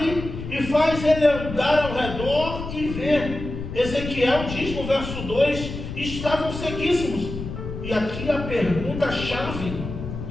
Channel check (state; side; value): noise; left; rumble, 8 dB below the sound